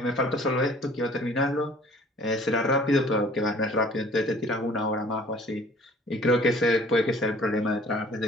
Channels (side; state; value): both; normal; correlation 0.52